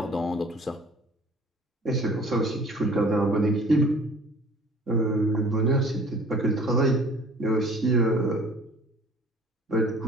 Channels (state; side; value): normal; both; correlation 0.50